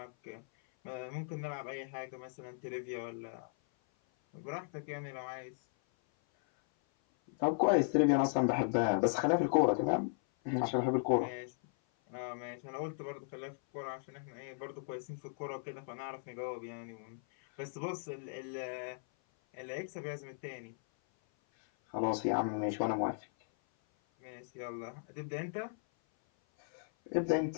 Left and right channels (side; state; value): right; silent; 53 dB below the other